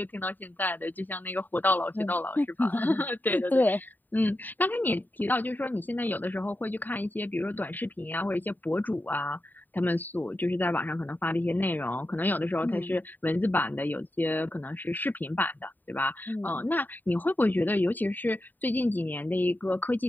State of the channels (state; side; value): late; right; 0.089 ms